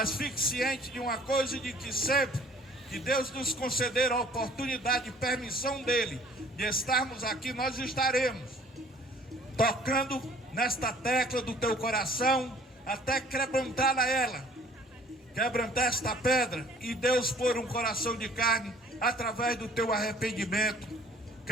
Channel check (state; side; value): normal; both; correlation 0.54